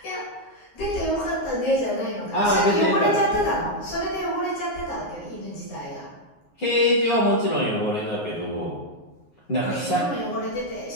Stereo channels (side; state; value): right; late; 9.6 ms